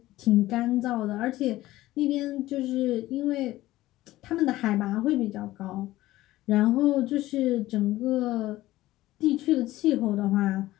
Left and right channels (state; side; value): quieter; right; 16.5 dB